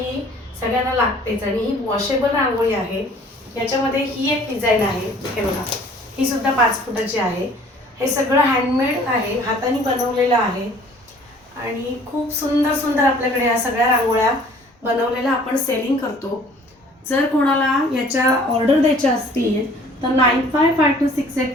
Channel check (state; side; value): normal; both; correlation 0.53